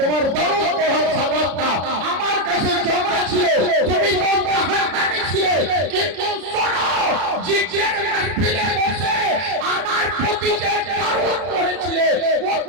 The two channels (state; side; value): late; left; 33 ms